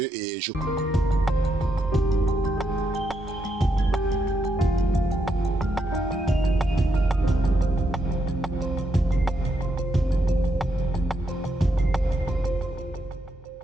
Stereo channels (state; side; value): normal; both; correlation 0.80